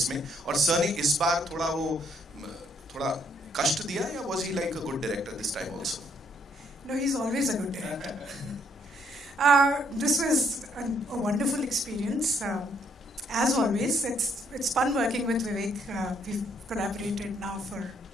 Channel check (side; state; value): both; normal; correlation 0.70